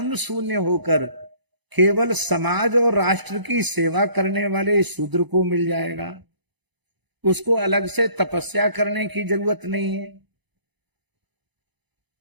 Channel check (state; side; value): late; left; 0.99 ms